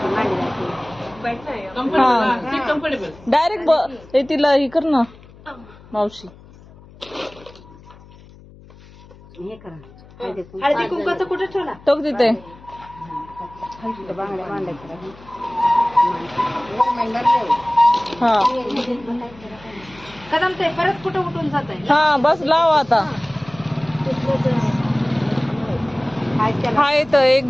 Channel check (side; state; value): left; noise; hum, 22 dB below the sound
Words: कम्फर्टेबल. डायरेक्ट तिला हे कर ना मावशी. हळदी कुंकाचं कुठे ठेवला? तो तिथे. हा कदम ते परत कुठं उठून जात आहे? हा बस लाव आता. हाय तर